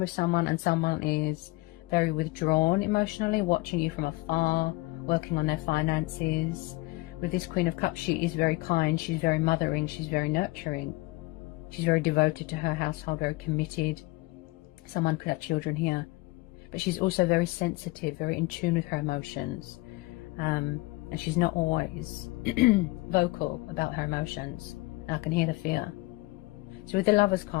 someone and someone is very withdrawn emotionally, watching you from afar, working on their finances. With this Queen of Cups, she is very kind, she's very mothering, she's very nurturing, she's very devoted to her household, very committed. Someone could have children here, but she's also very sensitive, very in tune with her emotions. And she's not always vocal about her emotions. I can hear the fear. So with the Lovers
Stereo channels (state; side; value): quieter; right; 22.2 dB